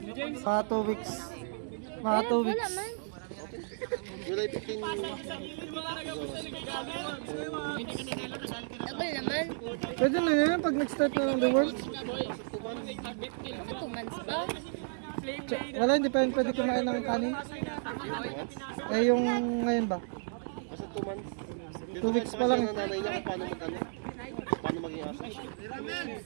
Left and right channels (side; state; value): left; silent; digital silence